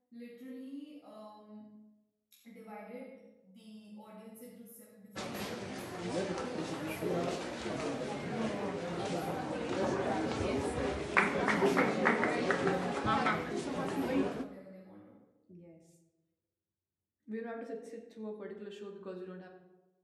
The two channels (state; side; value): identical; both; correlation 1.00